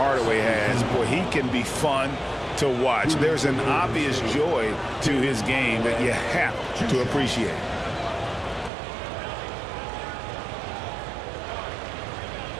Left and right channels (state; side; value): drops out; left; at 8.7 s